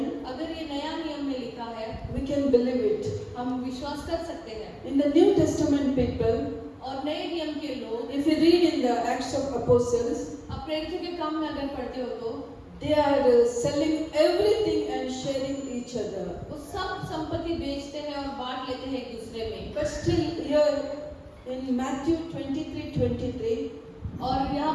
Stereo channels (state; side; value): identical; both; correlation 1.00